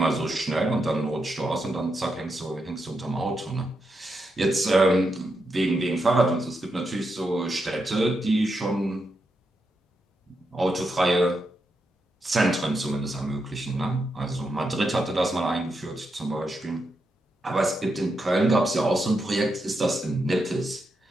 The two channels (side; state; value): both; normal; correlation 0.84